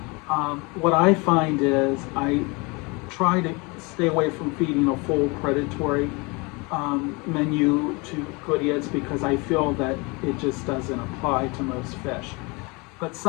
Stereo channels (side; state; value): right; quieter; 27.8 dB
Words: What I find is I try to stay away from feeding a full predatory menu to GOODEIDS because I feel that it just doesn't apply to most fish. But